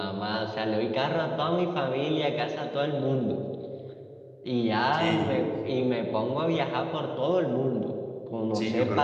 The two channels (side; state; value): both; identical; correlation 1.00